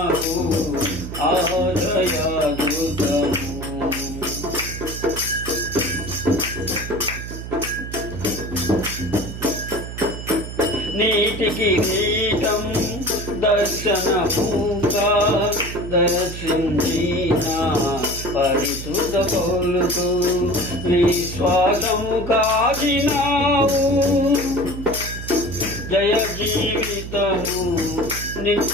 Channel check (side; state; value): right; noise; hum, 9 dB below the sound